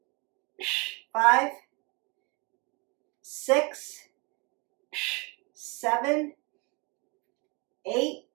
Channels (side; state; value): left; quieter; 29.2 dB